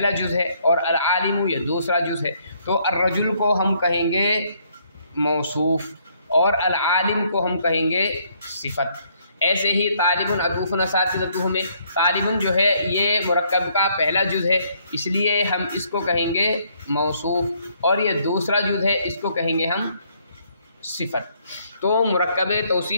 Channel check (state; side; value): inverted; both; correlation -0.68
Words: जुज़ है और अल-आलिमु ये दूसरा जुज़ है। तो अर्रजुल को हम कहेंगे मौसूफ़ और अल-आलिम को हम कहेंगे सिफ़त। ऐसे ही तालिबुन अतूफ़ुन असातिज़तुहु में तालिबुन जो है ये मुरक्कब का पहला जुज़ है, इसलिए हम इसको कहेंगे मौसूफ़, और ये दूसरा जुज़ है, इसको कहेंगे हम सिफ़त। तो मुरक्कब